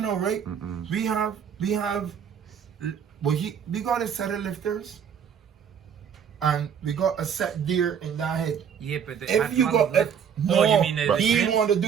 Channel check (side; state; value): left; quieter; 7.7 dB